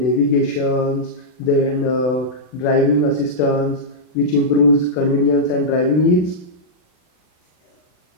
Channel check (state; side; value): late; right; 40 ms